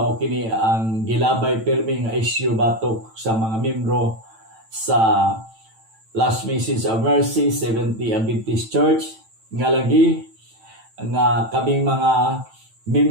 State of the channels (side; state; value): left; late; 9.0 ms